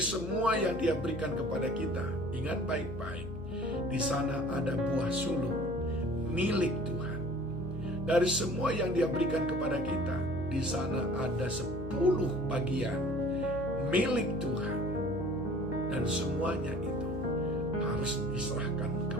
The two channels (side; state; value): left; noise; hum, 10 dB below the sound